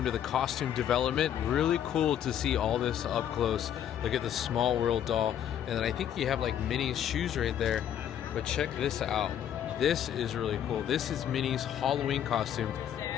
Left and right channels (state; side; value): quieter; right; 10.0 dB